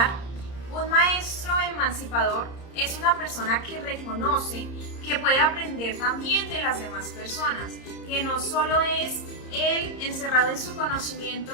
un maestro emancipador es una persona que reconoce que puede aprender también de las demás personas, que no solo es él encerrado en su conocimiento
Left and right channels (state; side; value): late; right; 30 ms